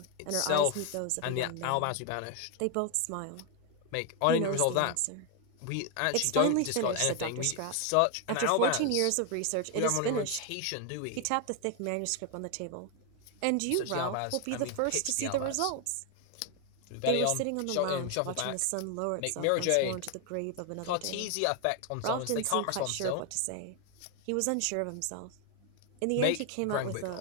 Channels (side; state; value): both; different; correlation 0.01